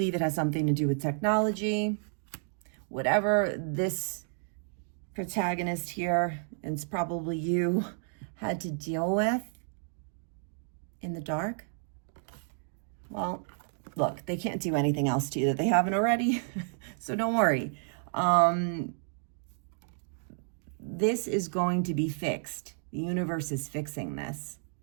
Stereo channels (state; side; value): silent; left; 57 dB below the other